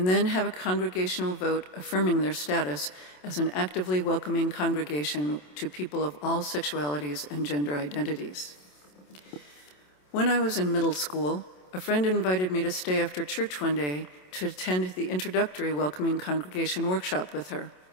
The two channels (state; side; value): late; right; 27 ms